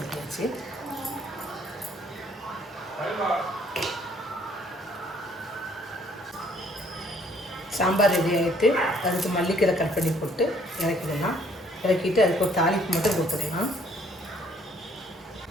சாம்பார் ரெடி ஆகிட்டு அதுக்கு மல்லிக்கீரை கட் பண்ணி போட்டு இறக்கிடலாம். இறக்கிட்டு அதுக்கு ஒரு தாளிப்பு மட்டும் கொடுத்துடலாம்.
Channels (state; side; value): normal; both; correlation 0.63